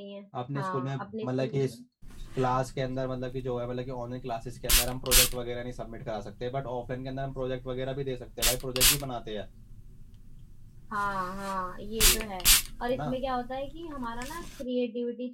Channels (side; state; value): both; identical; correlation 1.00